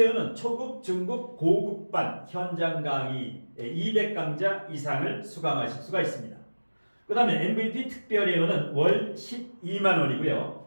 초급, 중급, 고급반 현장 강의 200강좌 이상을 수강하실 수가 있습니다. 그 다음에 MVP 특별회원은 월 12만원이고요.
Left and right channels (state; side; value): inverted; both; correlation -1.00